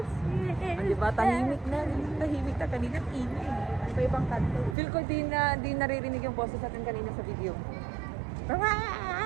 see? Di ba? Tahimik na. Tahimik na kanina. Ingay. Sa ibang kanto. Feel ko di naririnig yung boses natin kanina sa video.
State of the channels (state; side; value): drops out; left; at 4.8 s